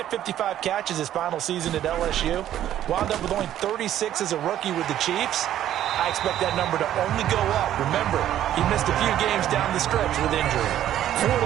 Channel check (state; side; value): quieter; left; 11.8 dB